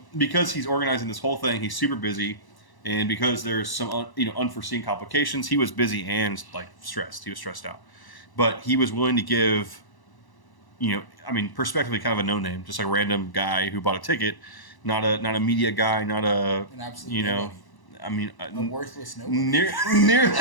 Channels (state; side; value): late; right; 1.0 ms